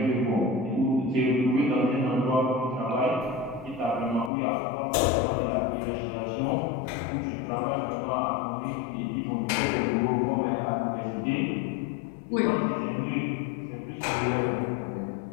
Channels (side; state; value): right; drops out; at 4.3 s